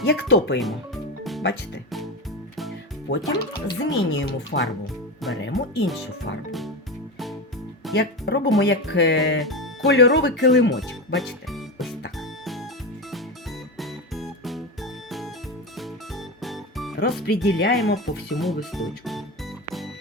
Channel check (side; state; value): both; normal; correlation 0.19